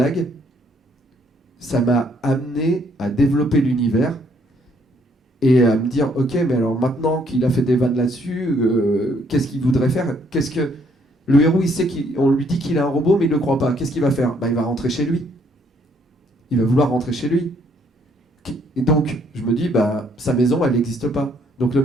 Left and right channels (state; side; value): normal; both; correlation 0.67